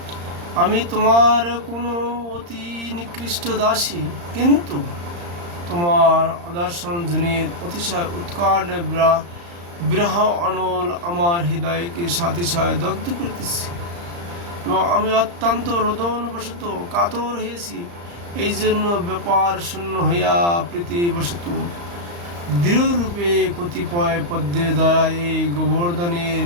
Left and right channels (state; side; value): late; left; 35 ms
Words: আমি তোমার কোনো অতি নিকৃষ্ট দাসী, কিন্তু তোমার আদর্শন জনিত অতিশয় উৎকট বিরহ অনল আমার হৃদয়কে সাতিশয় দগ্ধ করিতেছে। এবং আমি অত্যন্ত রোদনবশত কাতর হয়েছি, এই জন্য ব্যাপার শূন্য হইয়া প্রীতিবশত দৃঢ়রূপে কতিপয় পদ্মের দ্বারা এই গোবর্ধনের